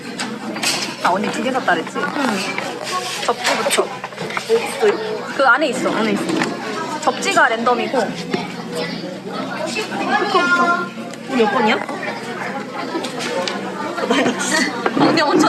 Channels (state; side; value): identical; both; correlation 1.00